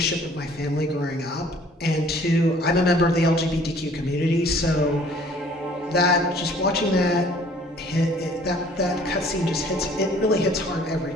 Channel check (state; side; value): normal; both; correlation 0.55